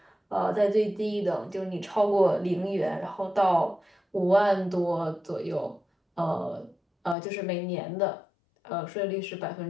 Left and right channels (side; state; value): right; drops out; at 7.2 s